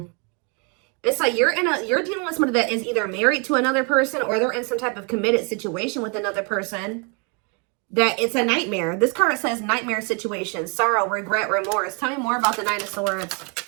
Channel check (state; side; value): quieter; left; 35.0 dB